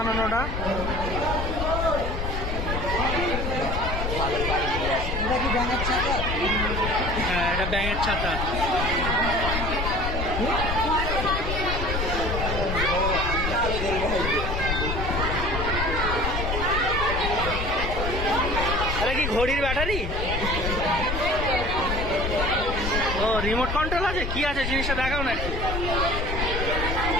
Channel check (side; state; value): left; noise; rumble, 3 dB below the sound